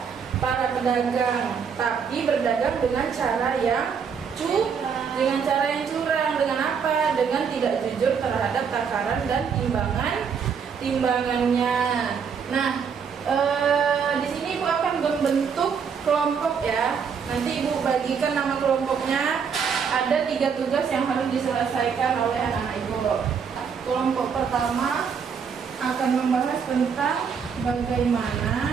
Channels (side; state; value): left; quieter; 6.5 dB